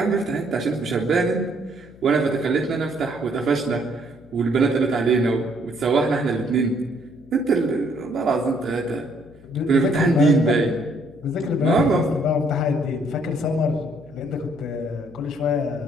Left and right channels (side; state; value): left; noise; hum, 24 dB below the sound